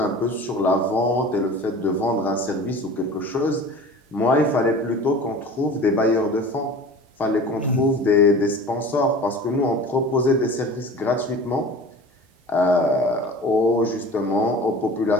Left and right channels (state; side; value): normal; both; correlation 0.39